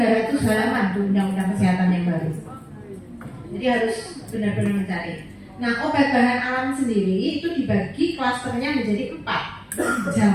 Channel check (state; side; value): identical; both; correlation 1.00